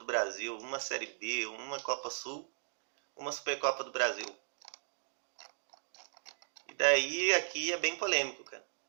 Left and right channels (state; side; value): silent; left; digital silence